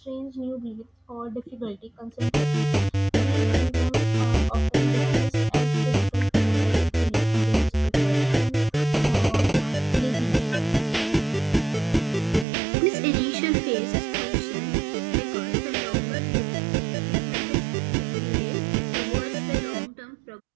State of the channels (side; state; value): left; drops out; at 12.5 s